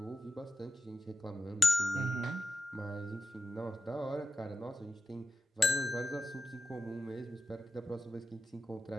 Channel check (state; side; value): normal; both; correlation 0.89